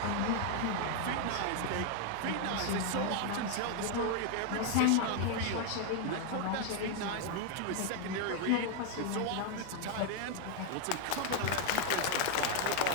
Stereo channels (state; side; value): different; both; correlation 0.01